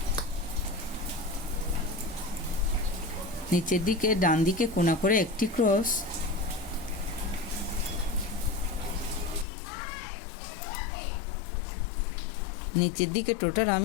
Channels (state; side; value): drops out; right; at 9.5 s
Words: নিচের দিকে ডান দিকে কোণা করে একটি ক্রস, নিচের দিকে টোটাল